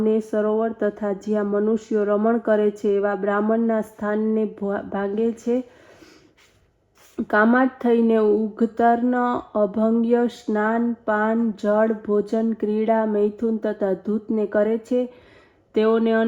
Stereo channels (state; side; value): identical; both; correlation 1.00